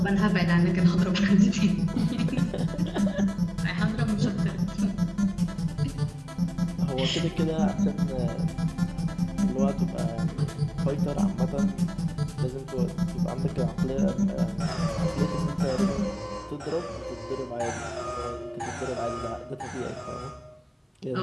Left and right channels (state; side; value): identical; both; correlation 1.00